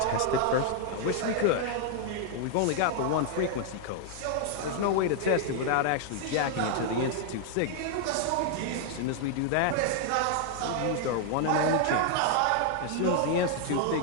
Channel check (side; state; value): both; different; correlation 0.00